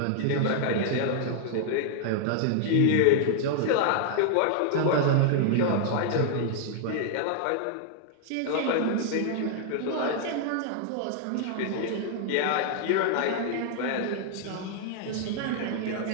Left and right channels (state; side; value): different; both; correlation -0.01